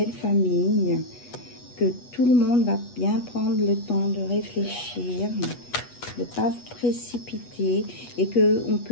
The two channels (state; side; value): late; right; 8.1 ms